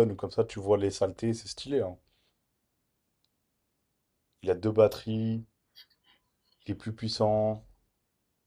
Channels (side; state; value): both; identical; correlation 1.00